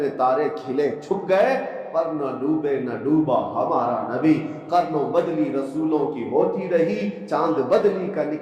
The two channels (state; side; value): identical; both; correlation 1.00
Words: تارے کھلے چھپ گئے پر نہ ڈوبے نہ ڈوبا ہمارا نبی، قرنوں بدلی رسولوں کی ہوتی رہی، چاند بدلی کا